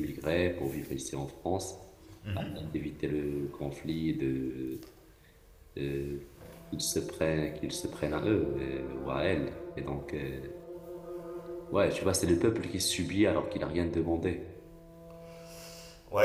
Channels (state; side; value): identical; both; correlation 1.00